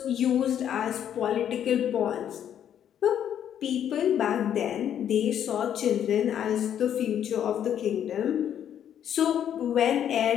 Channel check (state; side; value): quieter; right; 9.7 dB